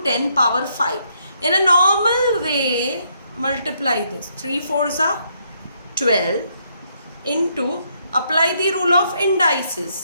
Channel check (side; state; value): both; inverted; correlation -0.73